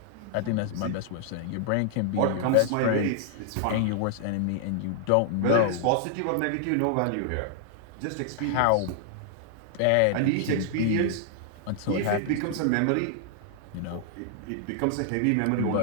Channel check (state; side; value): different; both; correlation -0.01